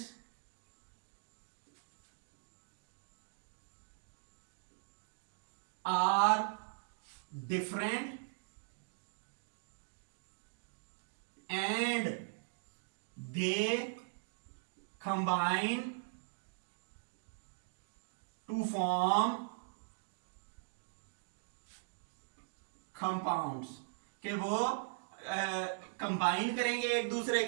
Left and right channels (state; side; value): silent; left; digital silence